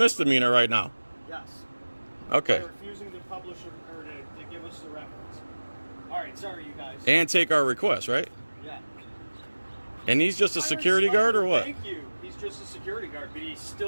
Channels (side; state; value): both; inverted; correlation -1.00